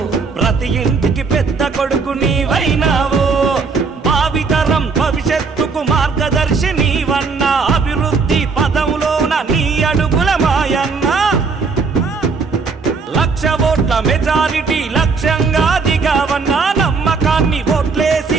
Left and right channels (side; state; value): left; quieter; 4.7 dB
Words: ప్రతి ఇంటికి పెద్ద కొడుకు నీవైనావు భావితరం భవిష్యత్తుకు మార్గదర్శి నీవన్నా అభివృద్ధి పదంలోన నీ అడుగుల మాయన్నా 1,00,000 ఓట్ల మెజారిటీ లక్ష్యంగా దిగావన్నా నమ్మకాన్ని ఓట్లేసి